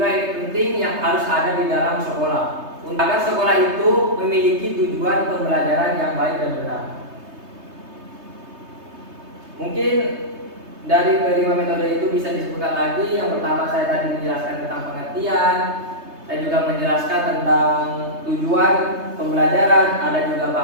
ini penting yang harus ada di dalam sekolah agar sekolah itu memiliki tujuan pembelajaran yang baik dan benar. Mungkin dari kelima metode itu bisa disebutkan lagi. Yang pertama, saya tadi menjelaskan tentang pengertian, saya juga menjelaskan tentang tujuan pembelajaran, ada juga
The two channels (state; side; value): late; left; 3.2 ms